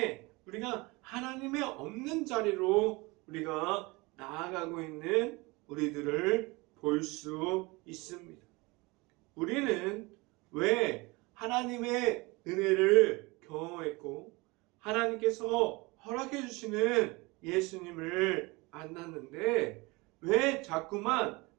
우리가 하나님의 없는 자리로 우리가 나아가고 있는 우리들을 볼 수 있습니다. 우리는 왜 하나님의 은혜를 경험했고 하나님께서 허락해 주시는 예수님을 만났는데 왜 자꾸만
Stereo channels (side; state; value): left; quieter; 24.6 dB